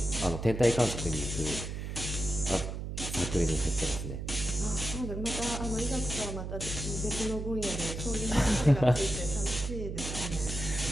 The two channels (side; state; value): right; noise; hum, 5 dB below the sound